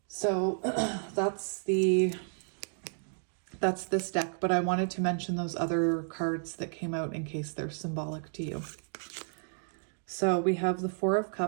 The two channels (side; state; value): left; silent; digital silence